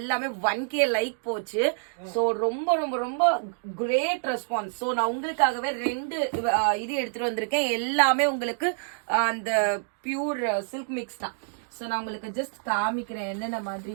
1K லைக் போச்சு. ஸோ ரொம்ப ரொம்ப ரொம்ப கிரேட் ரெஸ்பான்ஸ். ஸோ நான் உங்களுக்காகவே 2 இது எடுத்துட்டு வந்திருக்கேன். எல்லாமே உங்களுக்கு அந்த பியூர் சில்க் மிக்ஸ் தான். ஸோ நான் உங்களுக்கு ஜஸ்ட் காமிக்கிறேன் என்னென்ன மாதிரி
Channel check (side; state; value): left; silent; digital silence